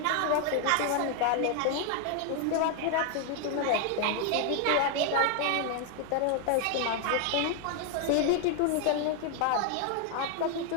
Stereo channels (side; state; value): both; different; correlation 0.00